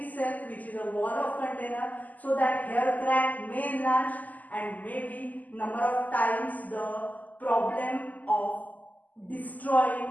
which is a wall of container, so that hair crack may enlarge, and maybe number of times the problem of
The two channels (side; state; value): right; late; 0.080 ms